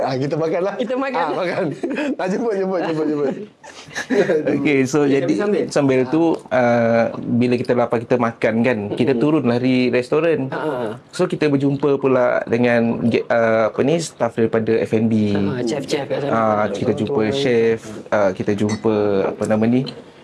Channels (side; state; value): both; identical; correlation 1.00